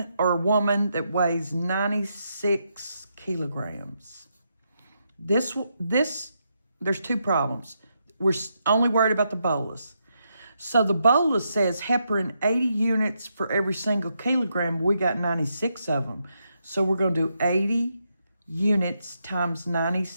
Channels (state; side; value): inverted; both; correlation -0.81